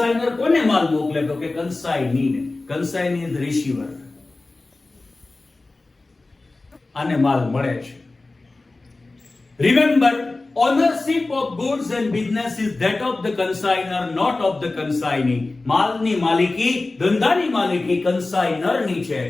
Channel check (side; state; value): right; quieter; 3.2 dB